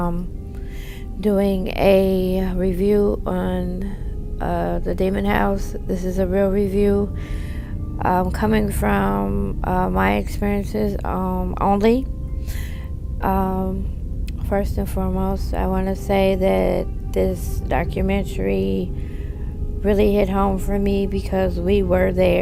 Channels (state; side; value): identical; both; correlation 1.00